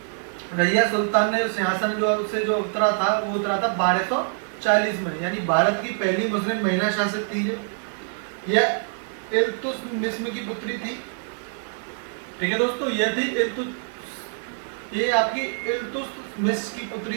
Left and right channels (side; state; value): left; silent; 62 dB below the other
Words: रजिया सुल्तान ने सिंहासन जो उतरा था वो उतरा था 1240 में, यानी भारत की पहली मुस्लिम महिला शासक थी यह इल्तुतमिश की पुत्री थी। ठीक है दोस्तों, ये थी ये आपकी इल्तुतमिश की पुत्री